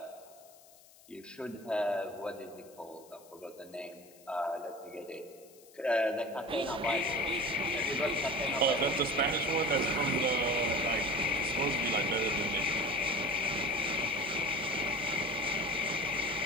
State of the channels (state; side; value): noise; left; hiss, 25 dB below the sound